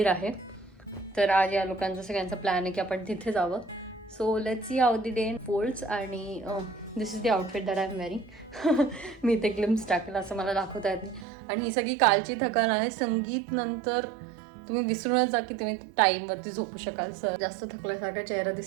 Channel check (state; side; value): drops out; left; at 11.2 s